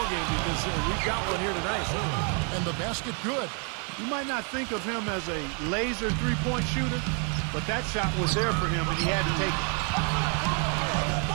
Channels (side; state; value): left; quieter; 38.8 dB